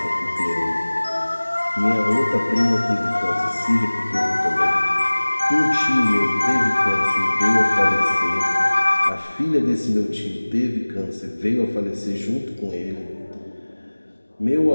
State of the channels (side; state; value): both; inverted; correlation -1.00